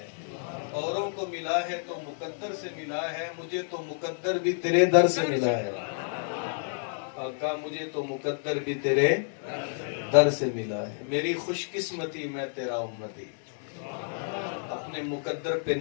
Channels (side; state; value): right; silent; 58 dB below the other